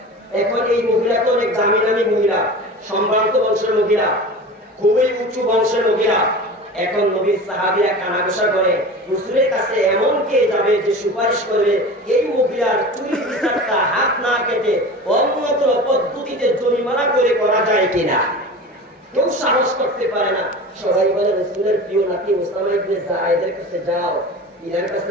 এখন এই মহিলা তো অনেক দামি দামি মহিলা, সম্ভ্রান্ত বংশের মহিলা, খুবই উঁচু বংশের মহিলা। এখন নবীর সাহাবীরা কানাঘুষা করে হুজুরের কাছে এমন কে যাবে যে সুপারিশ করবে এই মহিলার চুরির বিচারটা হাত না কেটে অন্য কোনো পদ্ধতিতে জরিমানা করে করা যায় কিনা। কেউ সাহস করতে পারে না। সবাই বলে রাসূলের প্রিয় নাতি ওসামা ইবনে যায়েদের কাছে যাও, ইনার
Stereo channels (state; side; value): normal; both; correlation 0.34